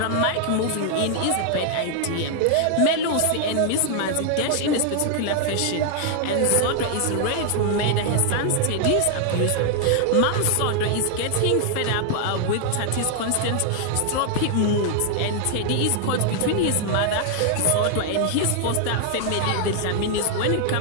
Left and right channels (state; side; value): different; both; correlation 0.00